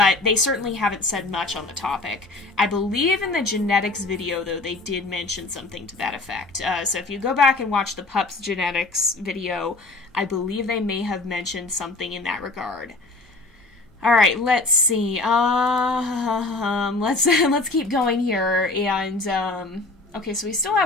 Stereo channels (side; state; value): right; quieter; 3.2 dB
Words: they certainly haven't said much on the topic. I believe in the genetics video, though, they did mention something to that effect. So if you go back and watch the pups genetics video, I believe they may have mentioned something in that regard. Alright, let's see. Let's keep going here, and, okay, so we still